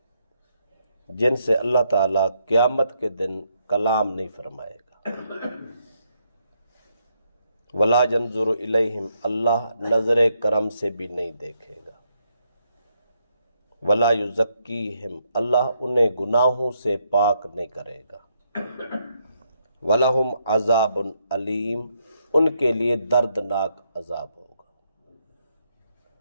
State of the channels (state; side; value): inverted; both; correlation -0.77